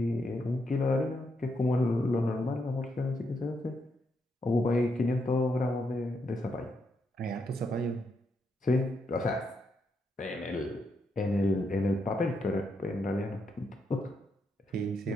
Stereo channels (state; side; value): normal; both; correlation 0.80